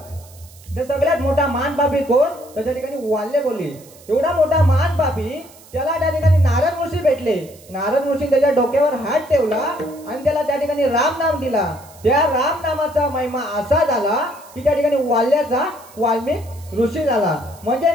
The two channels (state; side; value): noise; right; hiss, 23 dB below the sound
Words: तर सगळ्यात मोठा महान पापी कोण तर त्या ठिकाणी वाल्य कोली. एवढा मोठा महान पापी त्याला त्या ठिकाणी नारद ऋषी भेटले. नारद ऋषी त्याच्या डोक्यावर हात ठेवला आणि त्याला त्या ठिकाणी राम नाम दिला. त्या राम नामाचा महिमा असा झाला की त्या ठिकाणी वाल्याचा वाल्मिक ऋषी झाला. म्हणजे